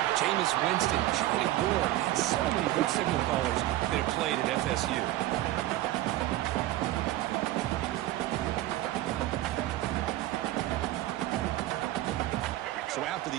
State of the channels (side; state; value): left; quieter; 15.5 dB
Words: Jameis Winston, Charlie Ward, and so many good signal callers that have played at FSU. So after